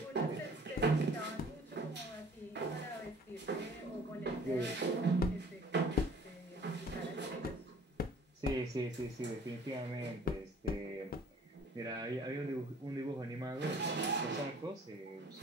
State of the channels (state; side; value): normal; both; correlation 0.52